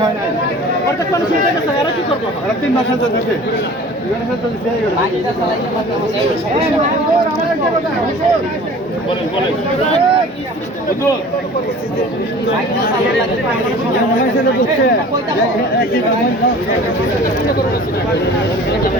হয় না অর্ধেক মানুষ উঠে গেছে এরা কি করবো 3 মাস হচ্ছে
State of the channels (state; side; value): normal; both; correlation 0.44